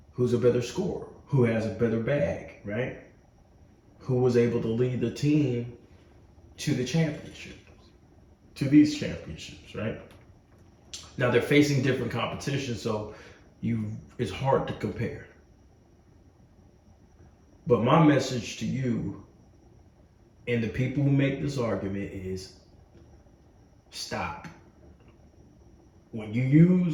Who's a better scorer? Who has a better bag, right? Who was able to lead the team to the championships, to these championships, right? Now they're facing different competition, so it's hard to compare. But my message to you and the people who make this argument is stop. When you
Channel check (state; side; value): identical; both; correlation 1.00